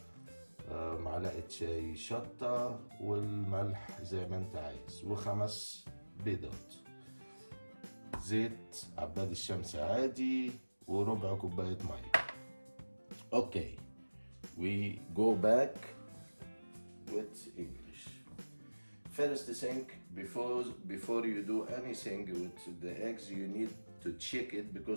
معلقة شاي شطة، والملح زي ما انت عايز، و5 بيضات، زيت عباد الشمس عادي، وربع كوباية مية. Okay, we go back with English. First thing, before you do anything with the eggs, you need to check it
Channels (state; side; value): inverted; both; correlation -1.00